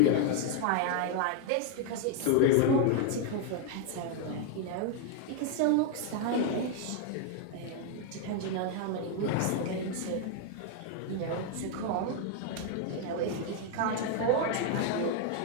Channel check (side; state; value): both; different; correlation 0.01